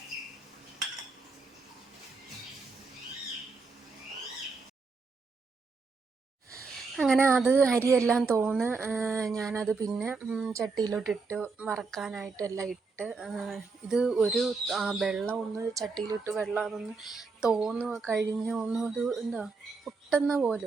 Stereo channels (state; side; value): quieter; left; 4.3 dB